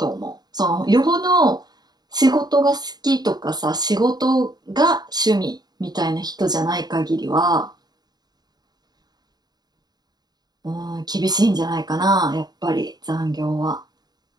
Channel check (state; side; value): late; left; 0.20 ms